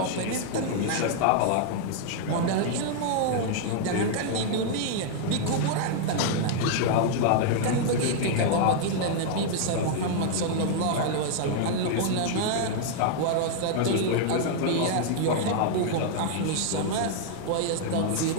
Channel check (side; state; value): both; different; correlation -0.01